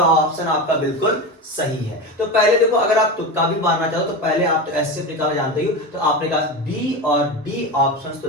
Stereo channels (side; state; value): both; normal; correlation 0.22